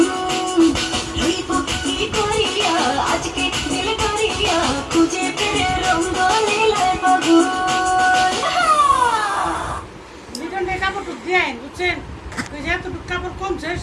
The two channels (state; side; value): identical; both; correlation 1.00